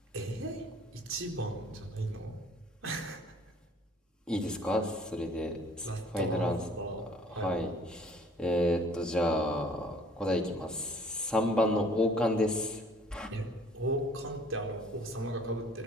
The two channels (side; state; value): both; normal; correlation 0.55